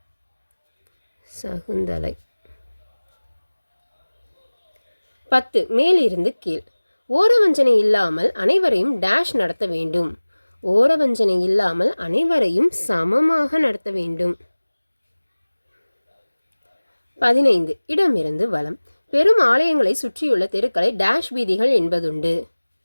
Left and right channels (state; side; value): inverted; both; correlation -1.00